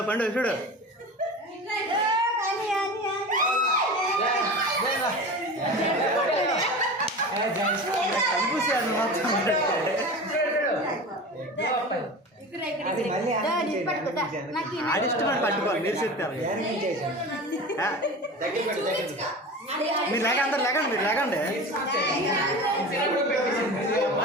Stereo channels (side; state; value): both; normal; correlation 0.32